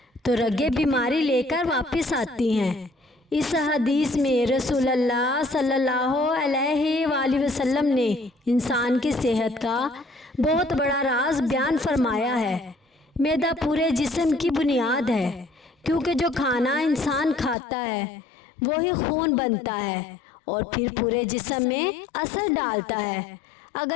تو رگیں بیماری لے کر واپس آتی ہیں۔ اس حدیث میں رسول اللہ صلی اللہ علیہ وآلہ وسلم نے انسان کی صحت کا بہت بڑا راز بیان فرمایا ہے۔ معدہ پورے جسم کی بنیاد ہے، کیونکہ جو کھانا انسان کھاتا ہے وہی خون بنتا ہے اور پھر پورے جسم میں اثر ڈالتا ہے۔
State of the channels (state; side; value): drops out; right; at 17.6 s